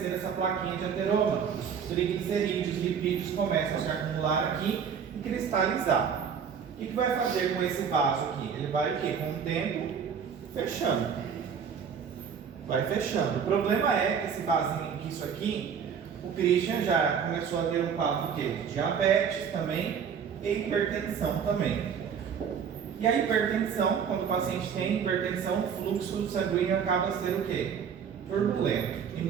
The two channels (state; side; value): quieter; left; 7.2 dB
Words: essa plaquinha de ateroma. Os triglicerídeos, lipídios começam a se acumular aqui e cristalizar. O que vai fazer com esse vaso aqui? Ele vai o quê? Com o tempo, fechando. Vai fechando. O problema é que esse vasinho, que isso aqui, o Christian já começou a ter um quadro de diabetes também e hipertensão também. E a hipertensão, quando o paciente tem hipertensão, o fluxo sanguíneo acaba sendo o quê? Turbulento e